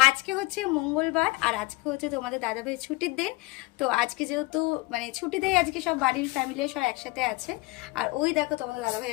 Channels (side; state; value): right; quieter; 22.5 dB